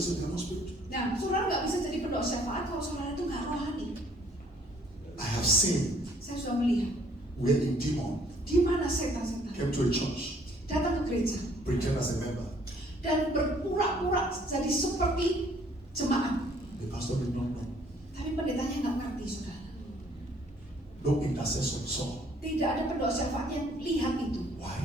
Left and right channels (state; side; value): normal; both; correlation 0.61